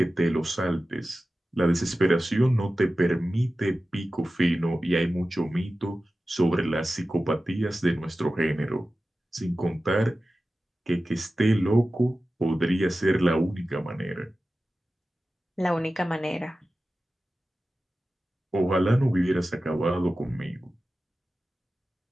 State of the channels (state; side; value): normal; both; correlation 0.95